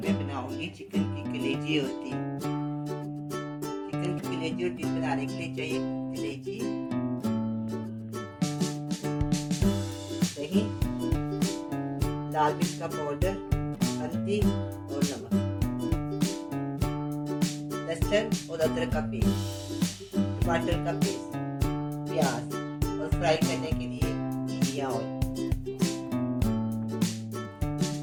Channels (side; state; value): both; identical; correlation 1.00